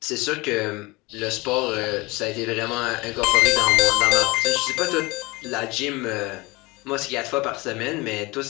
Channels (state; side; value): quieter; right; 23.7 dB